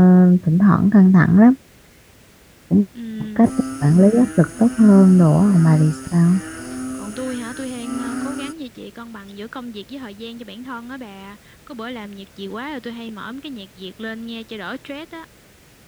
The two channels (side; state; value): both; identical; correlation 1.00